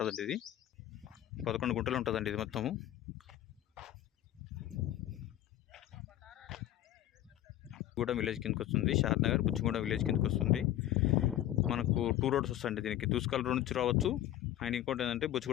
ఇది 11 గుంటలు ఉంటుందండి. ఇది మొత్తము గూడెం విలేజ్ కిందకి వస్తుంది. షాద్నగర్ బుచ్చిగూడెం విలేజ్ కిందకి వస్తుంది. మనకు 2 రోడ్స్ వస్తాయండి దీనికి. దూస్కల్ రోడ్ నుంచి రావచ్చు, అండ్ ఇంకోటి ఏంటంటే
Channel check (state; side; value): quieter; right; 13.0 dB